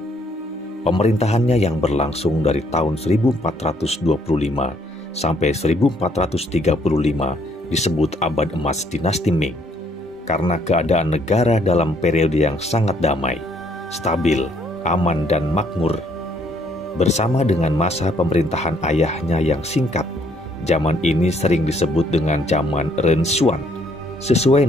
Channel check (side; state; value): both; normal; correlation 0.67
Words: Pemerintahannya yang berlangsung dari tahun 1425 sampai 1435 disebut abad emas dinasti Ming karena keadaan negara dalam periode yang sangat damai, stabil, aman dan makmur. Bersama dengan masa pemerintahan ayahnya yang singkat, zaman ini sering disebut dengan zaman Renshuan, sesuai